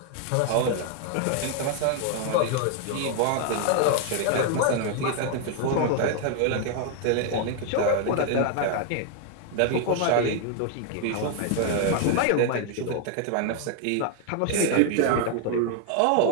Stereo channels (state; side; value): different; both; correlation 0.00